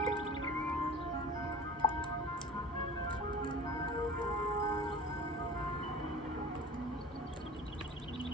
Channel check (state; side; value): normal; both; correlation 0.40